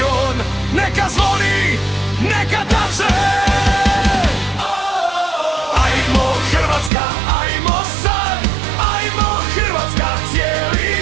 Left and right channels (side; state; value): left; drops out; at 6.9 s